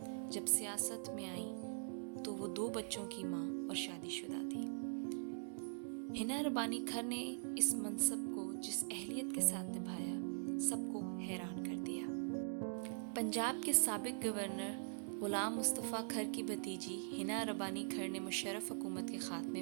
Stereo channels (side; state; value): left; silent; digital silence